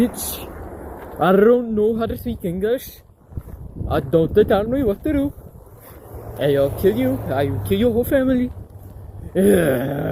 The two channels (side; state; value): both; identical; correlation 1.00